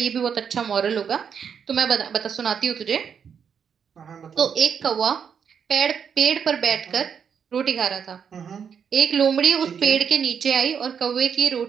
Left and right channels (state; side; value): quieter; left; 7.3 dB